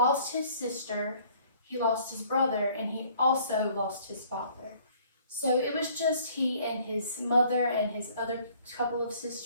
his sister, he lost his brother, and he also lost his father. So it was just he and his mother and his other couple of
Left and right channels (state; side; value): inverted; both; correlation -0.57